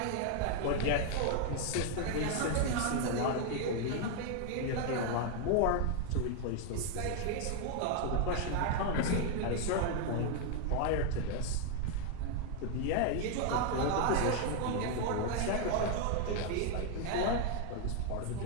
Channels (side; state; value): both; different; correlation 0.00